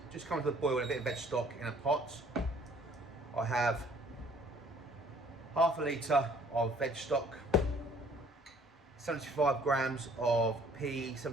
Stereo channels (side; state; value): both; normal; correlation 0.57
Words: just coming to the boil with a bit of veg stock in a pot. I have half a litre of veg stock, 75 grams of pea,